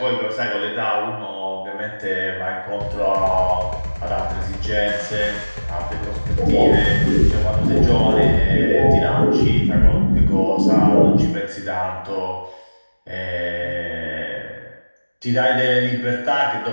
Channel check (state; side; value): inverted; both; correlation -1.00